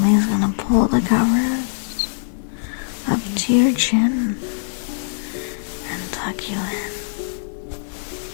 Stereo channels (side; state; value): right; silent; digital silence